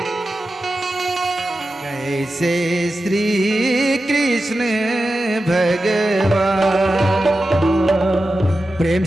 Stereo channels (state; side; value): normal; both; correlation 0.92